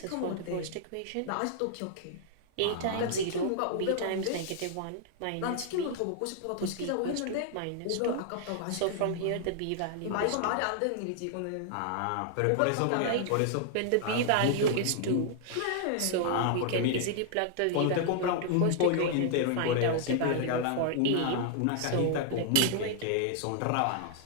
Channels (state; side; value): different; both; correlation -0.01